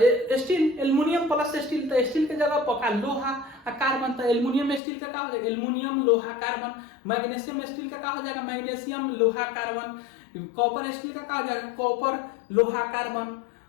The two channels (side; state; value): right; drops out; at 4.8 s